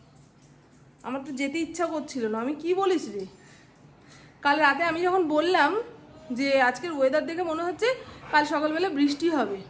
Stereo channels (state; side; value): identical; both; correlation 1.00